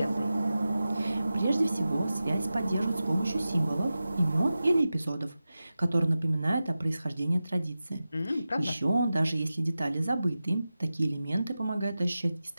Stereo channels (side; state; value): both; inverted; correlation -0.94